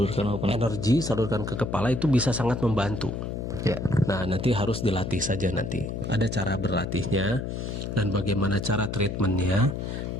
apa? Energi salurkan ke kepala itu bisa sangat membantu. Ya. Nah, nanti harus dilatih saja nanti. Ada cara berlatihnya dan bagaimana cara treatmentnya,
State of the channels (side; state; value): left; noise; hum, 5 dB below the sound